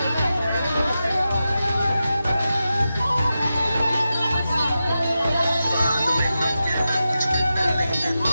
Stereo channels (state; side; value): inverted; both; correlation -0.91